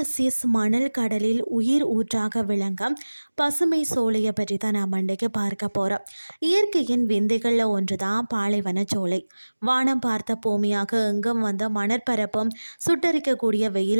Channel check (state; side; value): inverted; both; correlation -1.00